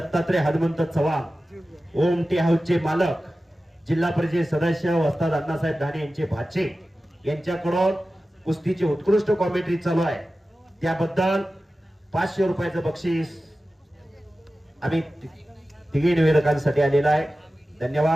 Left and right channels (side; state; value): both; normal; correlation 0.95